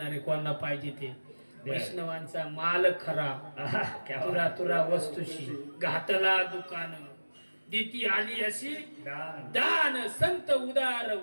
कोणाला पाहिजे ते वैष्णवांचा माल खरा क्या तुरा तुरा वस्तूशी घातला दुकान दिती आली अशी दान. दान संत उदार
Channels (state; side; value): inverted; both; correlation -1.00